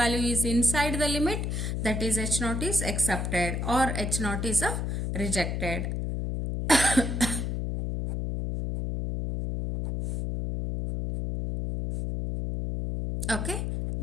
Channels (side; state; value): left; noise; hum, 2 dB below the sound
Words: is inside the limit, that is H naught is accepted or H naught is rejected. Okay,